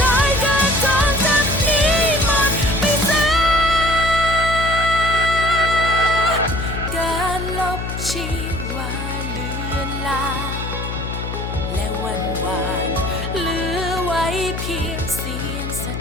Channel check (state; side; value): noise; left; hum, 5 dB below the sound